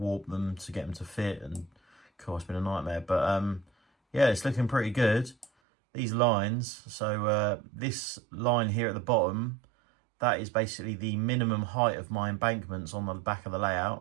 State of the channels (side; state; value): left; drops out; at 5.5 s